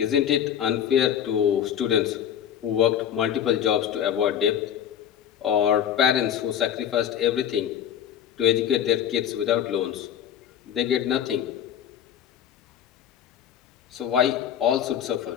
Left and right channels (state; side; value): quieter; right; 9.5 dB